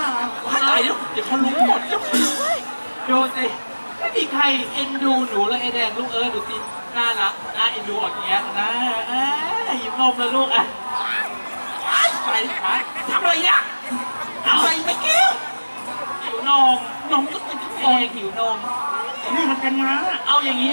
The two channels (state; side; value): inverted; both; correlation -1.00